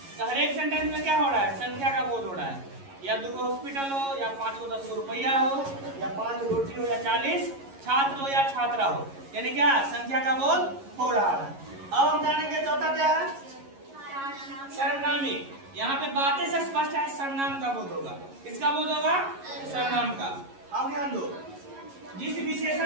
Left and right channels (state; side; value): late; left; 11 ms